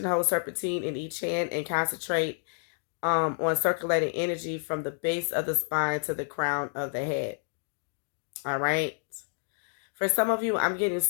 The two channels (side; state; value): right; silent; 58 dB below the other